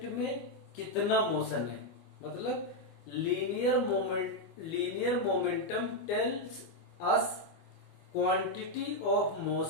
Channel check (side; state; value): right; late; 24 ms